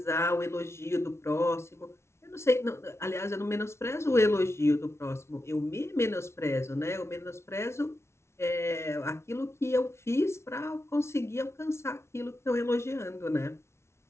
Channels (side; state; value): right; late; 0.13 ms